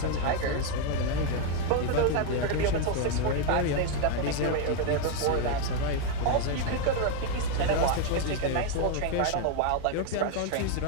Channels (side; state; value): both; different; correlation 0.01